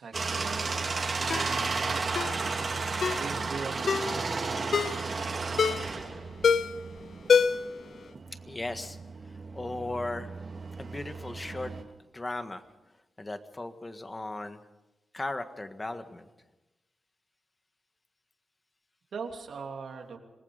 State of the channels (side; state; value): both; normal; correlation 0.85